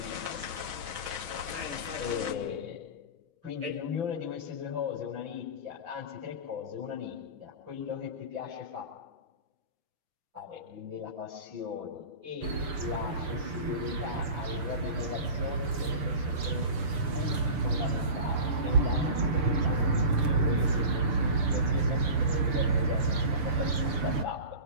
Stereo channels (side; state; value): left; late; 6.8 ms